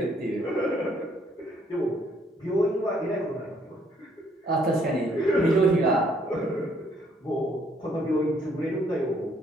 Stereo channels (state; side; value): normal; both; correlation 0.67